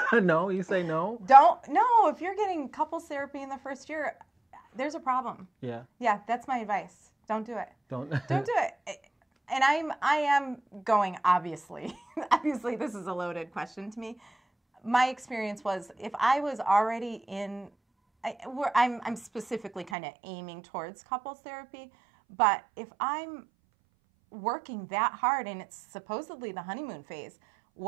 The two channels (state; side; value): drops out; left; at 19.9 s